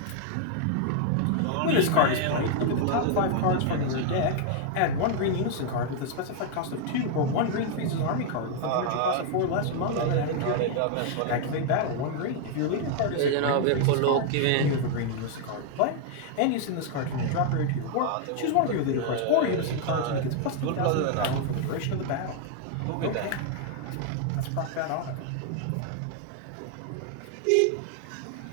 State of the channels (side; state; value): both; different; correlation 0.00